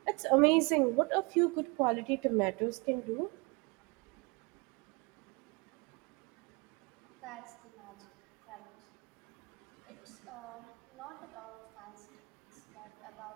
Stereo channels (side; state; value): left; quieter; 29.7 dB